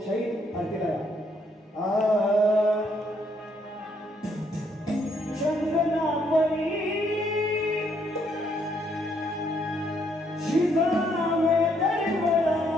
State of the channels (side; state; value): both; normal; correlation 0.71